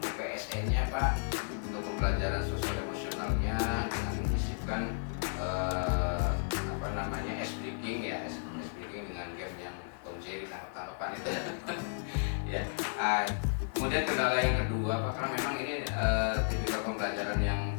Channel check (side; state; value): right; silent; digital silence